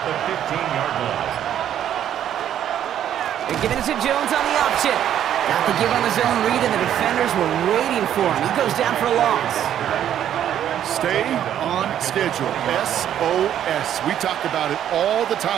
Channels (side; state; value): left; quieter; 10.5 dB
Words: the 15-yard line. They're giving it to Jones on the option. Got the give on the zone read, and the defenders were waiting for him. He goes down for a loss. Stay on schedule. SOS. We talk about it all the